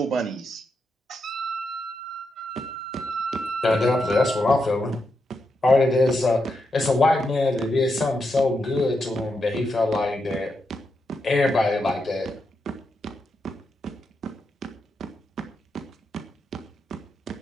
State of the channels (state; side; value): normal; both; correlation 0.84